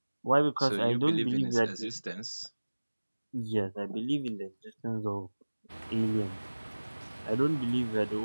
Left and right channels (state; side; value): inverted; both; correlation -1.00